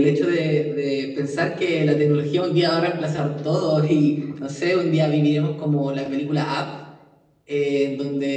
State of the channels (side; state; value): both; identical; correlation 1.00